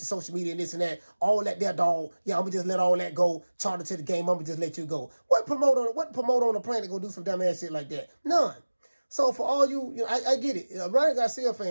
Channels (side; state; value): both; inverted; correlation -1.00